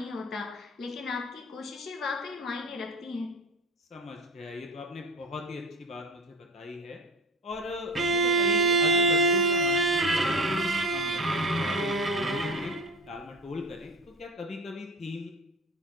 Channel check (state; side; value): normal; both; correlation 0.31